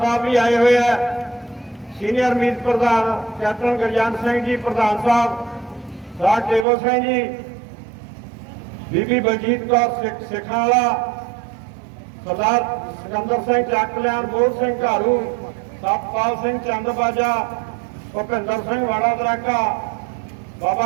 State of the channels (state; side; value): drops out; left; at 6.7 s